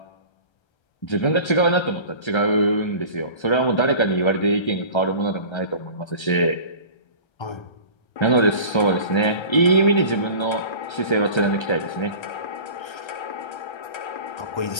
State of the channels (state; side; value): late; right; 1.3 ms